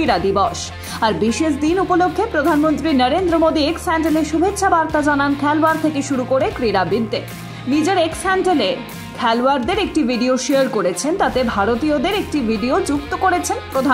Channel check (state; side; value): identical; both; correlation 1.00